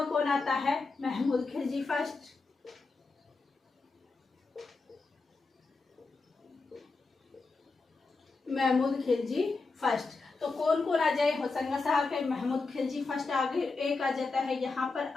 कौन आता है? महमूद खिलजी फर्स्ट। महमूद खिलजी फर्स्ट। तो कौन कौन आ जाए? होशंगा शाह के महमूद खिलजी फर्स्ट। आगे एक आ जाता है यहाँ पर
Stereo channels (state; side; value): quieter; right; 3.9 dB